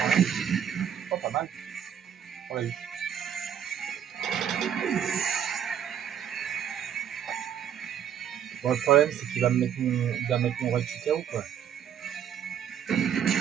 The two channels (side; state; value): left; quieter; 9.1 dB